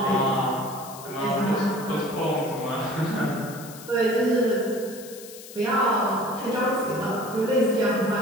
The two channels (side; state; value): left; noise; hiss, 16 dB below the sound